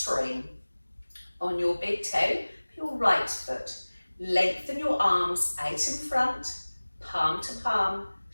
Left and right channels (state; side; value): inverted; both; correlation -1.00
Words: on your big toe, your right foot. Lengthen your arms out in front, palm to palm,